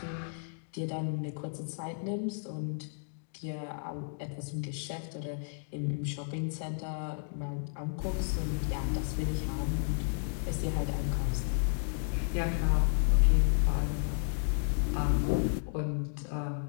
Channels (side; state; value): right; silent; digital silence